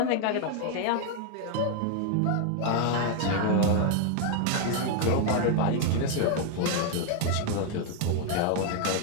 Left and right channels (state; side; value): different; both; correlation 0.01